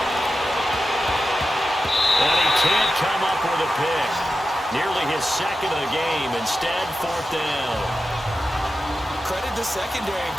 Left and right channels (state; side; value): normal; both; correlation 0.91